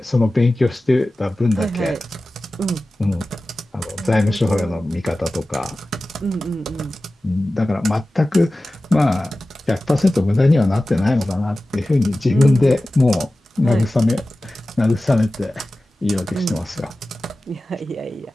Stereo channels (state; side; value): normal; both; correlation 0.96